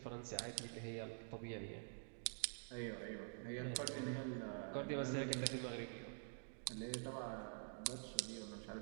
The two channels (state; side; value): silent; left; digital silence